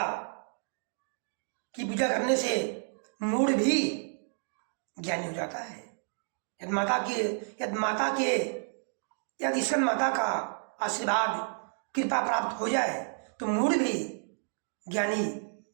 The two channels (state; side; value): silent; left; digital silence